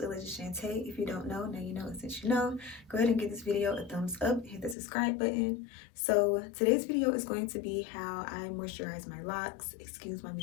Alaysia Chantae. If you don't know, now you know, and since you know, go ahead and give this video a thumbs up, hit the subscribe button. So today's video is going to be how I moisturize my locks. Excuse my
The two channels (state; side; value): drops out; right; at 4.8 s